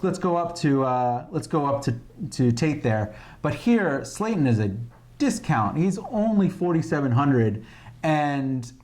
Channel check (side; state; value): both; identical; correlation 1.00